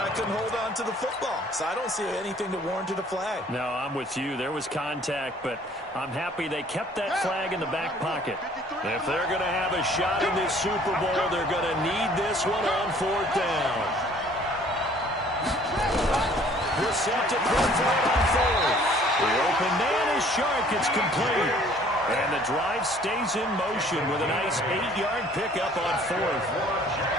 couldn't hold on to the football. So I don't see anything to warrant a flag. No, I'm with you. There was contact, but I'm happy they kept that flag in the back pocket. If they're going to have a shot in this Super Bowl, they're going to need this one on 4th down. Brissett to throw for it on 4th. The open man is Shark. It's complete. And the drive stays in motion with a nice 8-yard pickup on 4th.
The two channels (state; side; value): normal; both; correlation 0.56